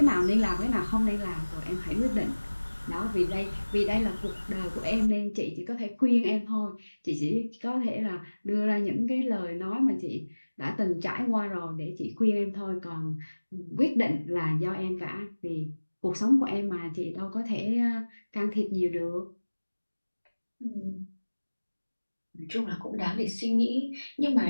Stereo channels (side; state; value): both; inverted; correlation -1.00